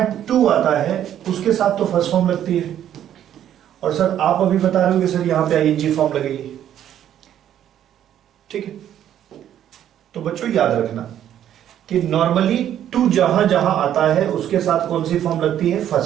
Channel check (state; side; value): quieter; left; 10.7 dB